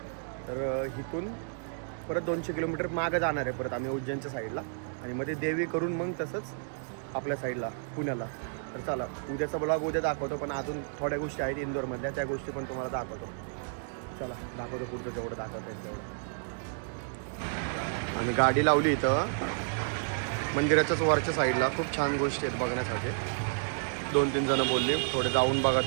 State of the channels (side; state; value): left; silent; digital silence